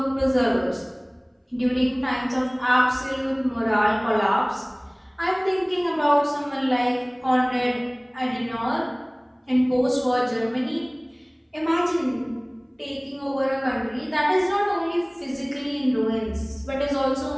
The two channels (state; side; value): identical; both; correlation 1.00